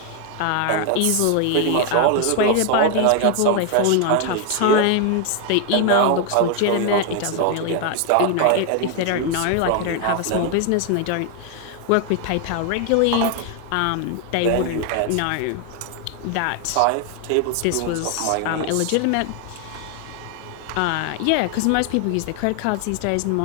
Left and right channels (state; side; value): different; both; correlation 0.01